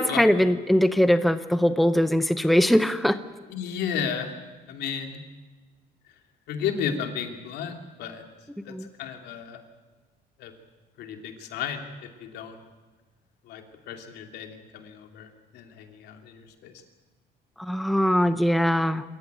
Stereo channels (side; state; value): both; normal; correlation 0.90